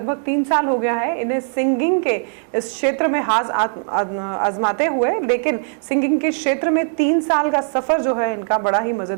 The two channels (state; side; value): silent; left; digital silence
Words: 3 साल हो गया है इन्हें सिंगिंग के इस क्षेत्र में हाथ आजमाते हुए, लेकिन सिंगिंग के क्षेत्र में 3 साल का सफर जो है इनका बड़ा ही